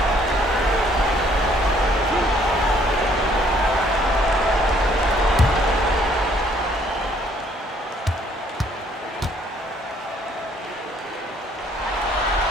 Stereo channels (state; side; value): normal; both; correlation 0.64